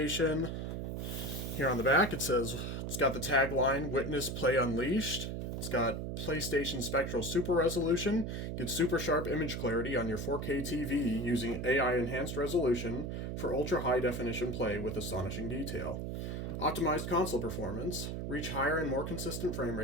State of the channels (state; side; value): noise; right; hum, 4 dB below the sound